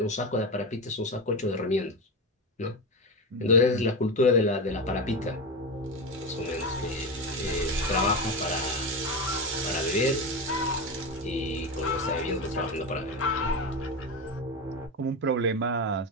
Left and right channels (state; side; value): normal; both; correlation 0.18